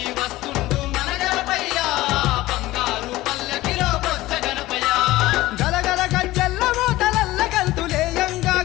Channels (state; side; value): quieter; right; 17.5 dB